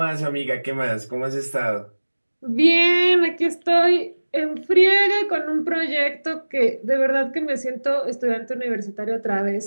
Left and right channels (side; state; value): both; inverted; correlation -1.00